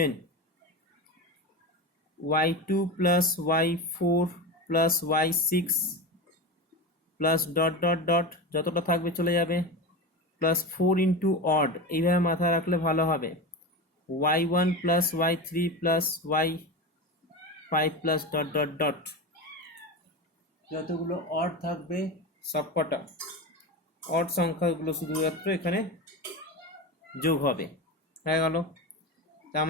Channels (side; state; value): both; normal; correlation 0.23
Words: y2 plus y4 plus y6 plus dot dot dot যতটা থাকবে চলে যাবে প্লাস 4 ইন্টু অড, এইভাবে মাথায় রাখলে ভালো হবে y1 plus y3 plus y5 plus dot dot dot, যতগুলো অড থাকবে সবকটা অড সংখ্যাগুলো শুধুমাত্র এখানে যোগ হবে, হয়ে গেল। তার